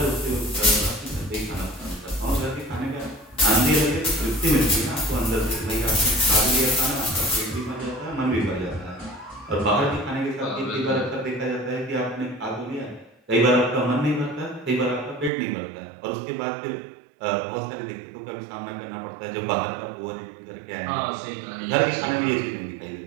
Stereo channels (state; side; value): drops out; left; at 15.3 s